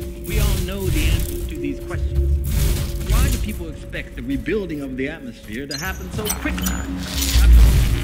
We all know the answers to these questions. Why do people expect the rebuilding of the atmosphere to happen so quickly?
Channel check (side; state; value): both; identical; correlation 1.00